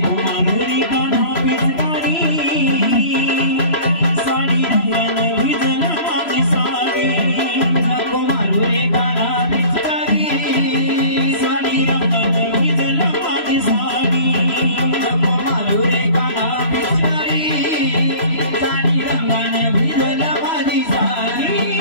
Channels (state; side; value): late; right; 3.0 ms